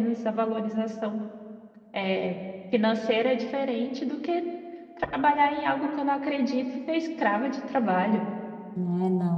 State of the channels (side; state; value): both; identical; correlation 1.00